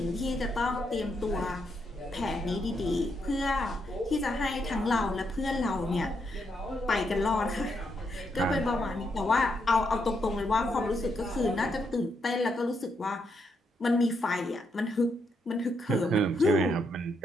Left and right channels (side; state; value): both; normal; correlation 0.79